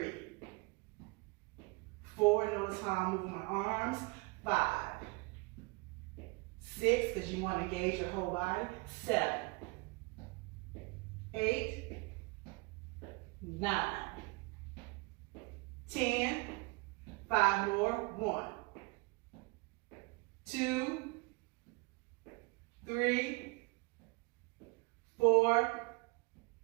4. Notice how I'm moving my arms. 5, 6, because you want to engage your whole body. 7, 8, 9, 10, 5 more. 1, 2, 3, 4,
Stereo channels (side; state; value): left; quieter; 27.8 dB